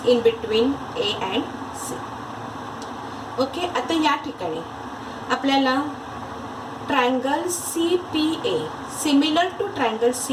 in between A and C. Okay, आता या ठिकाणी आपल्याला triangle CPA similar to triangle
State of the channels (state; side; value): identical; both; correlation 1.00